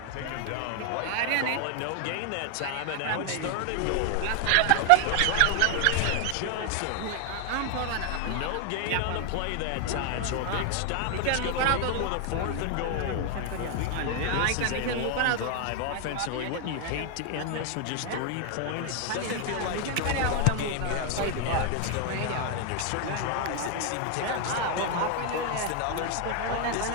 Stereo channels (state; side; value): different; both; correlation 0.00